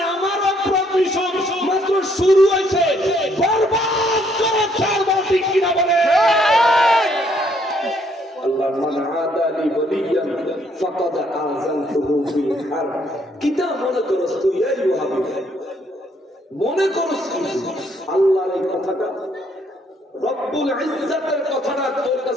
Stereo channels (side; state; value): both; normal; correlation 0.68